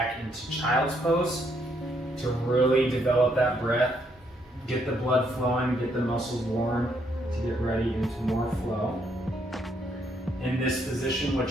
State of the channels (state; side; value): normal; both; correlation 0.73